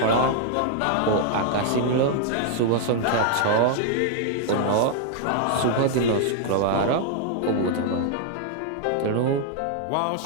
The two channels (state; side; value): different; both; correlation 0.00